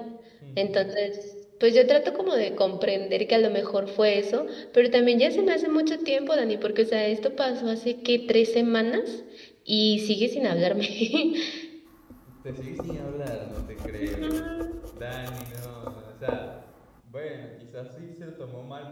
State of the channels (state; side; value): identical; both; correlation 1.00